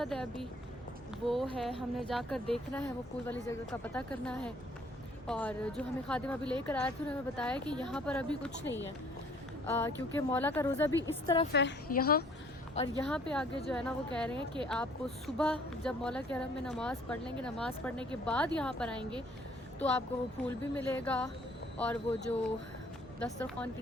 है अभी वो है, हमने जाकर देखना है वो फूल वाली जगह का पता करना है। और जो हमें खादिम अभी लेकर आए थे उन्होंने बताया कि यहाँ पर अभी कुछ नहीं है क्योंकि मौला का रोज़ा भी इस तरफ है यहाँ। और यहाँ पे आगे जो है ना वो कह रहे हैं कि आपको सुबह जब मौला के हरम में नमाज़ पढ़ लेंगे, नमाज़ पढ़ने के बाद यहाँ पर आएंगे तो आपको वो फूल भी मिलेगा और वो जो दस्तरखान की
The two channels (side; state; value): both; normal; correlation 0.58